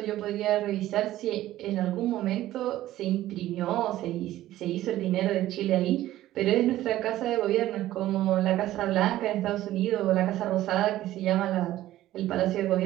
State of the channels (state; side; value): quieter; left; 14.5 dB